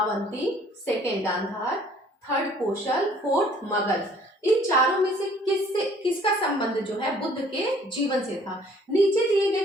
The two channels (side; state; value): both; normal; correlation 0.57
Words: सेकेंड गांधार, थर्ड कौशल, फोर्थ मगध। इन चारों में से किसका संबंध जो है बुद्ध के जीवन से था? नीचे दिए